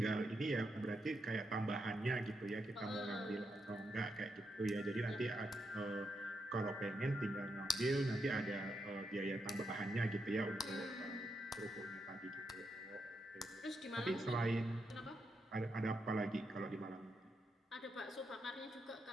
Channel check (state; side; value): normal; both; correlation 0.83